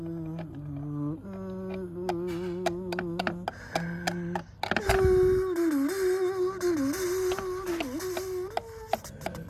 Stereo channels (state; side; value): identical; both; correlation 1.00